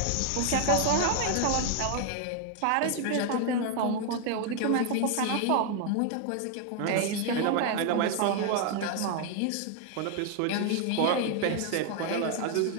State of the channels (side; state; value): both; different; correlation 0.01